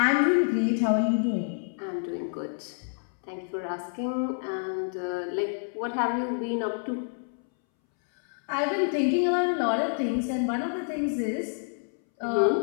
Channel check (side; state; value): right; silent; 59 dB below the other